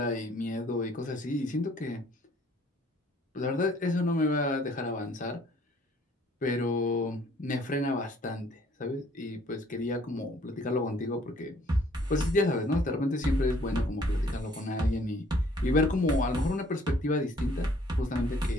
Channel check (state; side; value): normal; both; correlation 0.59